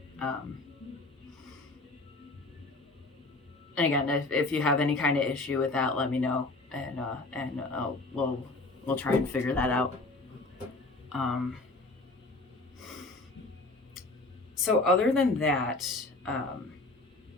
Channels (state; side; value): quieter; right; 3.1 dB